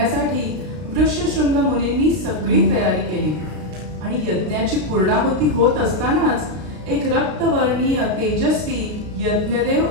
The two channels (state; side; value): late; left; 33 ms